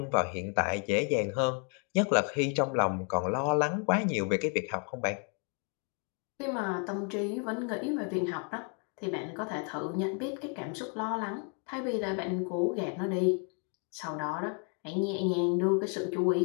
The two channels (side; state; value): right; quieter; 39.7 dB